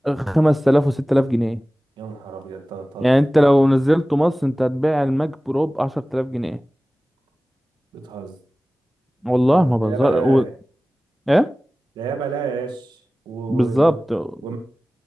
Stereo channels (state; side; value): normal; both; correlation 0.97